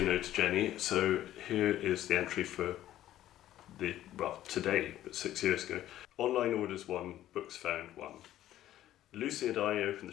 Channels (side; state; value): right; quieter; 13.2 dB